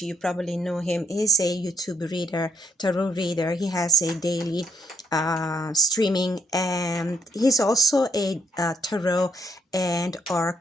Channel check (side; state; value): both; normal; correlation 0.71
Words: you probably know him. He's a YouTube reader, tarot reader. He has a daily streaming, and he's also a tarot and